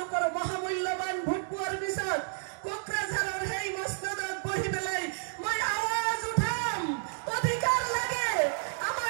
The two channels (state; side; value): silent; left; digital silence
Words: মহামূল্যবান ভোট পোৱাৰ পিছত কোকৰাঝাৰৰ সেই মছনদত বহি পেলাই মই আৱাজ উঠাম। অধিকাৰ লাগে,